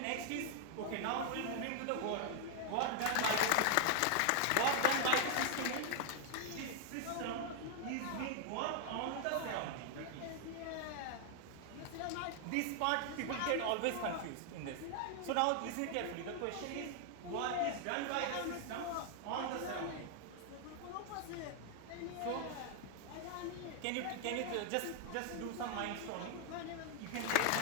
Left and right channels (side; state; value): both; different; correlation 0.00